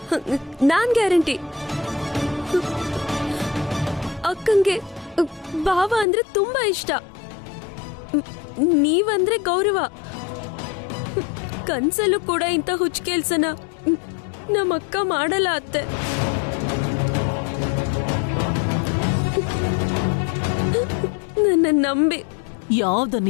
ನಾನ್ ಗ್ಯಾರಂಟಿ. ಅಕ್ಕಂಗೆ ಭಾವ ಅಂದ್ರೆ ತುಂಬಾ ಇಷ್ಟ, ನೀವಂದ್ರೆ ಗೌರವ. ಕನ್ಸಲ್ಲೂ ಕೂಡ ಇಂಥ ಹುಚ್ಚ ಕೆಲ್ಸನ ನಮ್ಮಕ್ಕ ಮಾಡಲ್ಲ ಅತ್ತೆ. ನನ್ನ ನಂಬಿ. ಯಾವ್ದು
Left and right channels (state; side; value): drops out; right; at 6.1 s